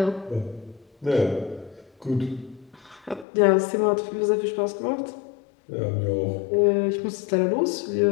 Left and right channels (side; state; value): right; drops out; at 3.2 s